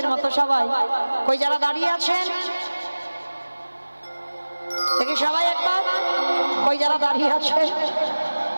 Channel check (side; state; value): both; inverted; correlation -1.00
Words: মতো সবাই কই যারা দাঁড়িয়ে আছেন দেখি সবাই একবার কই যারা দাঁড়িয়ে আছে